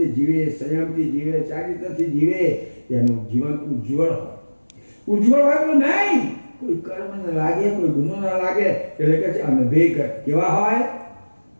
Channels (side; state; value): both; inverted; correlation -1.00